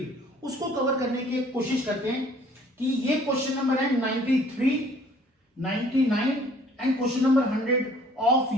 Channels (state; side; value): normal; both; correlation 0.56